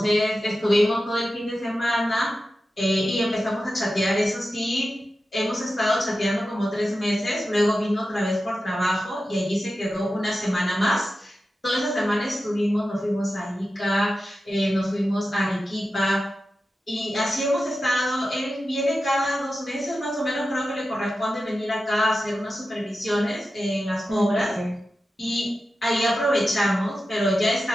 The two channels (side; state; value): both; normal; correlation 0.92